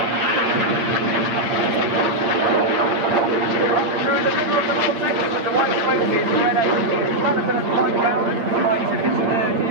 Through the middle of the vortex with the white smoke is Red 8. Lieutenant Mike Bowden, right in his third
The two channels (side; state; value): left; late; 8.8 ms